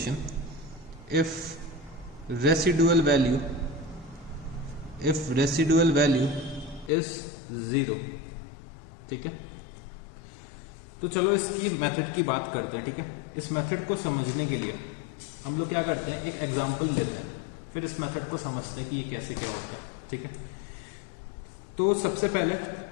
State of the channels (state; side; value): drops out; right; at 6.9 s